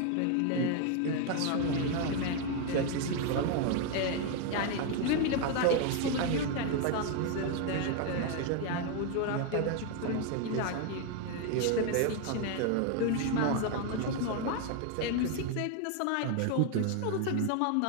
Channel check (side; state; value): both; different; correlation 0.01